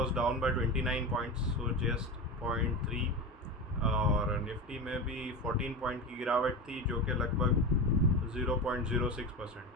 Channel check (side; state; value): both; normal; correlation 0.24